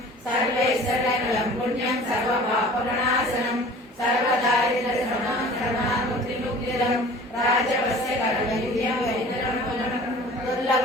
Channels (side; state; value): both; normal; correlation 0.45